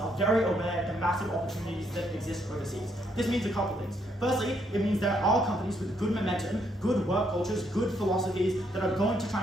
very aware of the massive opportunities that exist overseas. This means a couple things. Firstly, it means there are companies with good momentum, good work cultures, good philosophies that are going to try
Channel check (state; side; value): normal; both; correlation 0.73